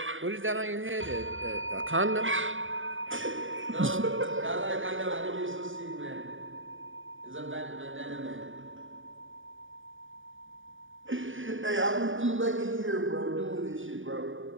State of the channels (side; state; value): left; late; 0.57 ms